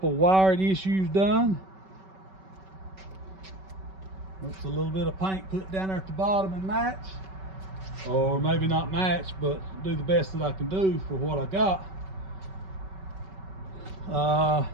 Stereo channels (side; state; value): left; late; 5.3 ms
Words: wiring issues done. Looks a little bit of paint put down there at the bottom and match. Or maybe not match, but do the best that I can do for what I got.